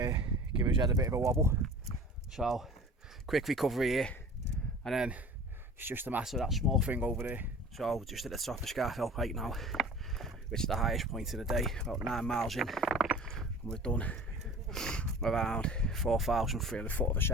give his head a bit of a wobble. So quick recovery here, and then it's just a matter of that small thing over there. So just at the top of Scafell Pike now, which is the highest point of the day, about 9 miles in, and we've done around 4,300 foot of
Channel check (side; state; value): both; normal; correlation 0.42